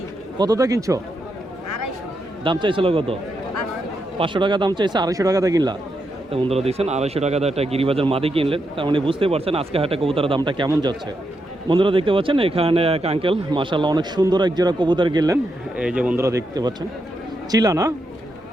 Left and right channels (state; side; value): normal; both; correlation 0.83